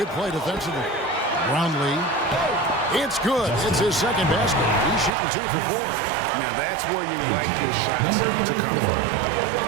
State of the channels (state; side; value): drops out; left; at 5.2 s